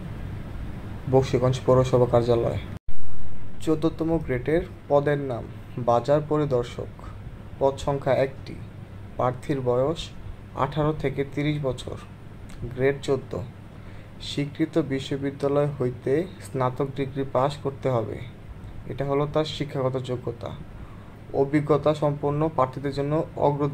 বকশীগঞ্জ পৌরসভা কার্যালয়। ১৪তম গ্রেডের পদের নাম বাজার পরিদর্শক। পদ সংখ্যা ১টি। প্রার্থীর বয়স ১৮ থেকে ৩০ বছর। গ্রেড ১৪। স্বীকৃত বিশ্ববিদ্যালয় হইতে স্নাতক ডিগ্রি পাস করতে হবে। এটা হলো তার শিক্ষাগত যোগ্যতা। অভিজ্ঞতা সম্পন্ন প্রার্থীদের জন্য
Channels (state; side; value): identical; both; correlation 1.00